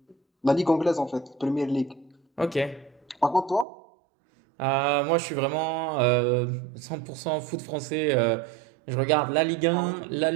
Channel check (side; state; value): left; drops out; at 3.7 s